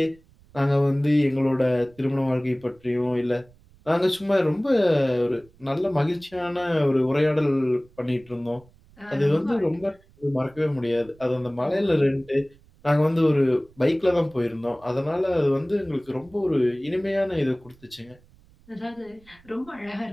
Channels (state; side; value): noise; right; rumble, 28 dB below the sound